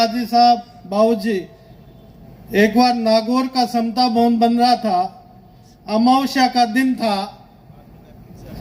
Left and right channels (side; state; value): both; identical; correlation 1.00